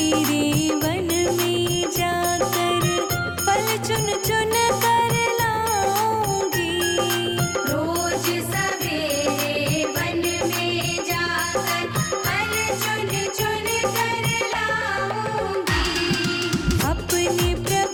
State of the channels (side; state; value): both; identical; correlation 1.00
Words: वन में जाकर फल चुन चुन कर लाऊंगी। रोज सवेरे वन में जाकर फल चुन चुन कर लाऊंगी। अपने